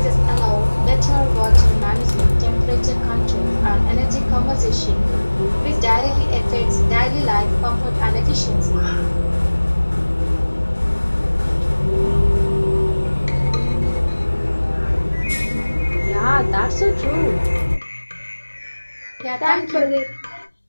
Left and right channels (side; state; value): both; inverted; correlation -1.00